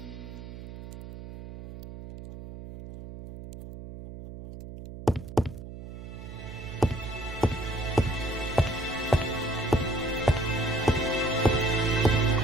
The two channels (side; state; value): right; noise; hum, 12 dB below the sound